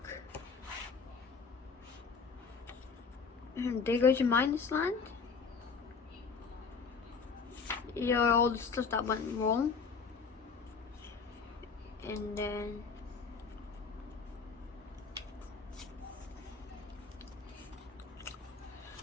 They go to Minus Land. You know, all the stuff that went wrong. And then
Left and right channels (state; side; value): quieter; right; 5.2 dB